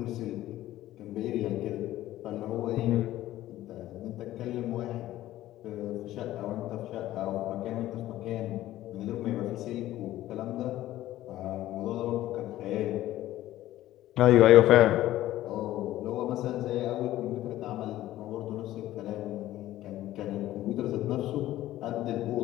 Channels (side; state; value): right; quieter; 14.6 dB